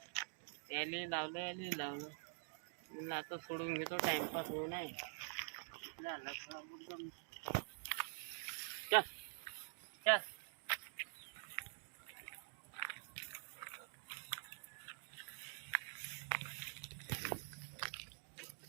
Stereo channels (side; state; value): left; silent; digital silence